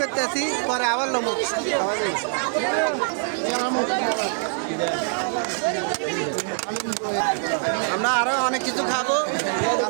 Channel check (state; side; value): silent; left; digital silence